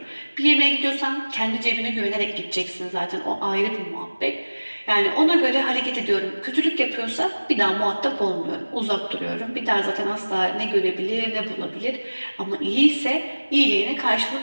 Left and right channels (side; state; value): both; inverted; correlation -1.00